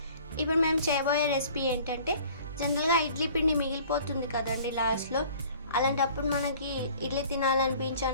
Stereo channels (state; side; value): inverted; both; correlation -0.50